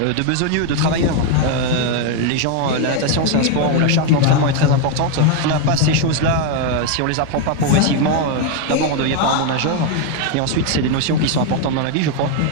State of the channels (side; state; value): both; different; correlation 0.01